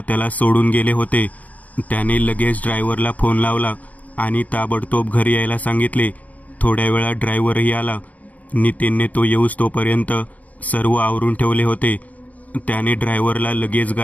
त्याला सोडून गेले होते। त्याने लगेच ड्रायव्हरला फोन लावला आणि ताबडतोब घरी यायला सांगितले। थोड्या वेळात ड्रायव्हरही आला। नितीनने तो येऊस तोपर्यंत सर्व आवरून ठेवले होते। त्याने ड्रायव्हरला लगेच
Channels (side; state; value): right; late; 0.072 ms